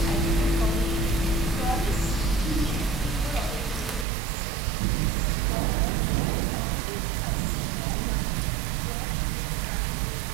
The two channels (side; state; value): left; drops out; at 4.0 s